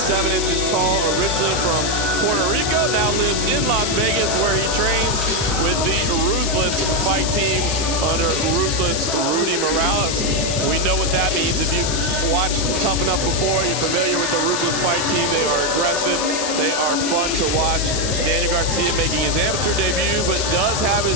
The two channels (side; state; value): left; noise; hiss, 3 dB below the sound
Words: inches tall, originally from Puerto Rico, now lives in Las Vegas where he trains with the Ruthless fight team under Ruthless Rudy Morales. We know what that means. If you've watched Tuff-N-Uff before, you're familiar with the Ruthless fight team. They are aggressive. They are fun to watch. Daniel Garcia making his amateur debut, but does have